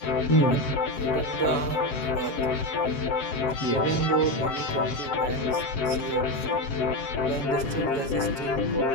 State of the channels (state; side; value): late; right; 7.2 ms